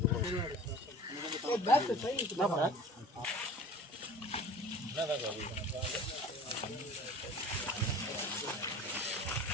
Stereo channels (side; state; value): both; normal; correlation 0.41